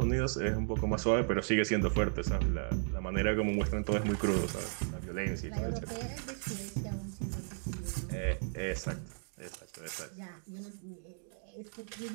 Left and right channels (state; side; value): silent; left; digital silence